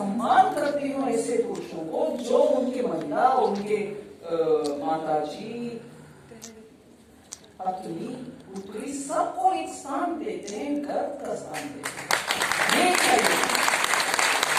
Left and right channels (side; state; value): both; identical; correlation 1.00